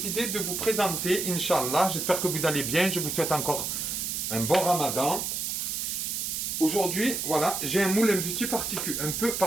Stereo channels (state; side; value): noise; right; hiss, 2 dB below the sound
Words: de vous présenter, Inch'Allah, j'espère que vous allez bien, je vous souhaite encore un bon ramadan. Aujourd'hui, voilà, j'ai un moule un peu